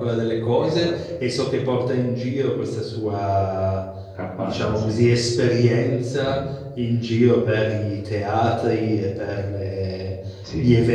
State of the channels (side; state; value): both; identical; correlation 1.00